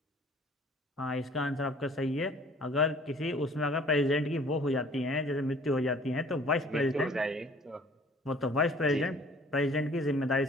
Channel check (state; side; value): normal; both; correlation 0.53